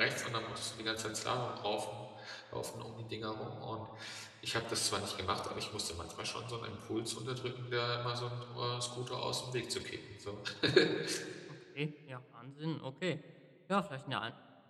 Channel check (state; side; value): identical; both; correlation 1.00